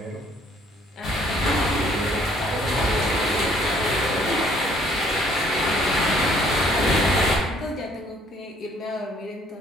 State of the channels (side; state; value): both; normal; correlation 0.61